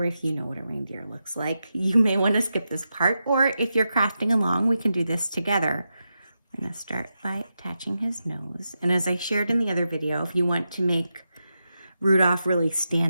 if you know what a reindeer looks like, you may want to skip this part, or if you're crafting along, we can do this together. I'm going to start by attaching his nose. And as I shared in the other video, if you want to make Rudolph really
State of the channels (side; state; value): both; inverted; correlation -0.88